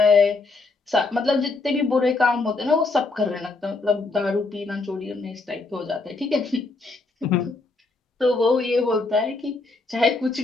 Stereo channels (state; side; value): quieter; right; 3.6 dB